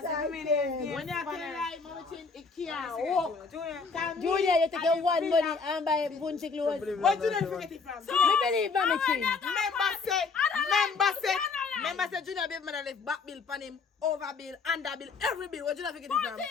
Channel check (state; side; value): quieter; right; 4.8 dB